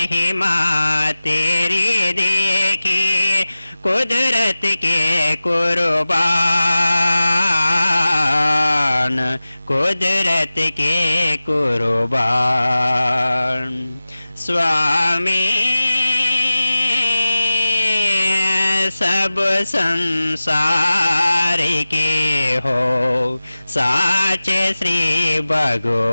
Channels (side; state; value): both; inverted; correlation -0.97